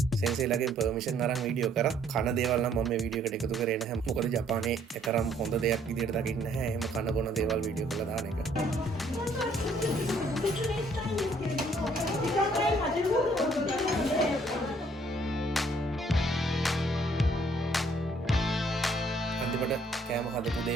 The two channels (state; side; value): normal; both; correlation 0.64